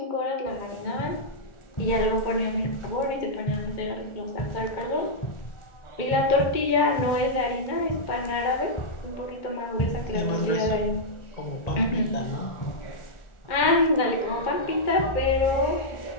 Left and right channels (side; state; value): right; late; 2.2 ms